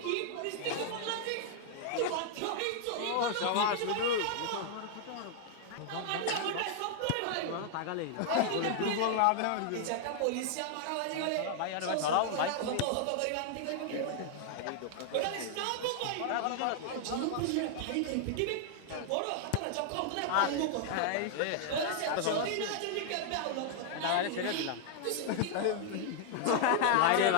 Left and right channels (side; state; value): both; different; correlation 0.00